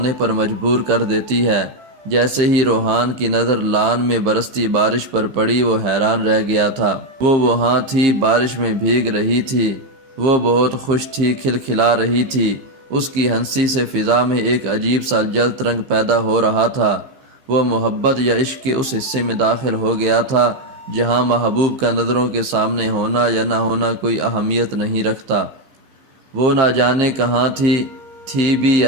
پر مجبور کر دیتی ہے۔ جیسے ہی روحان کی نظر لان میں برستی بارش پر پڑی وہ حیران رہ گیا تھا۔ وہ وہاں تھی، بارش میں بھیگ رہی تھی، وہ بہت خوش تھی، کھلکھلا رہی تھی۔ اس کی ہنسی سے فضا میں ایک عجیب سا جلد رنگ پیدا ہو رہا تھا۔ وہ محبت یا عشق کے اس حصے میں داخل ہو گیا تھا جہاں محبوب کا نظروں کے سامنے ہونا یا نہ ہونا کوئی اہمیت نہیں رکھتا۔ وہ نہ جانے کہاں تھی بھی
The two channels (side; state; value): left; late; 15 ms